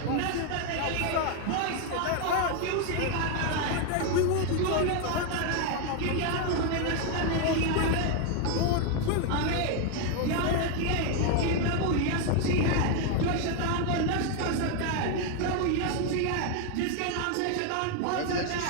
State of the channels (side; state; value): both; different; correlation 0.01